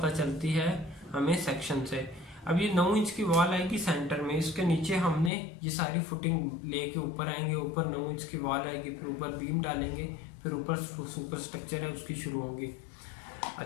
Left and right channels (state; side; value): drops out; right; at 5.3 s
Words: चलती है हमें सेक्शन से। अब ये 9 इंच की वॉल आएगी सेंटर में, इसके नीचे हमने ये सारी फुटिंग लेके ऊपर आएंगे, ऊपर 9 इंच की वॉल आएगी, फिर ऊपर बीम डालेंगे, फिर ऊपर सुपर स्ट्रक्चर है उसकी शुरू होगी।